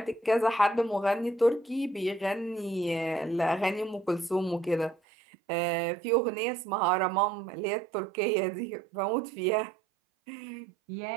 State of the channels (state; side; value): drops out; left; at 5.0 s